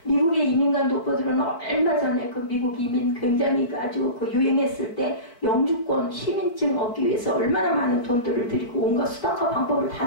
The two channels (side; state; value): right; late; 4.4 ms